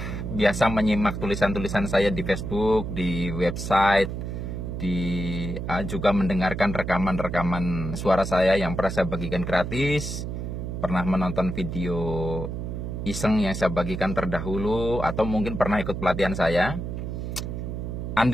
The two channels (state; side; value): noise; right; hum, 5 dB below the sound